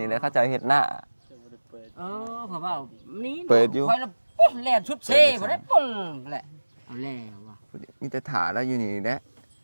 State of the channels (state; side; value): inverted; both; correlation -1.00